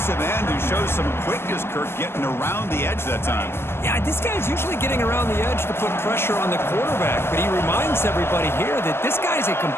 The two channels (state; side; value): late; right; 0.12 ms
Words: end, who shows some quickness, Kirk, getting around the edge that time. Yeah, this guy's usually getting around the edge to put pressure on the quarterback, but he reminds everybody here that this guy's a